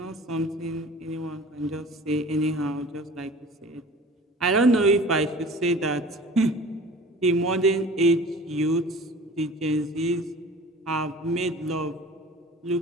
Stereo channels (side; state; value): both; normal; correlation 0.43